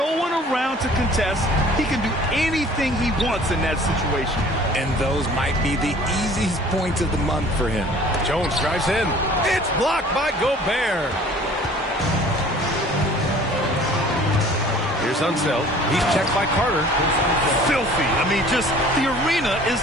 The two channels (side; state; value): both; normal; correlation 0.50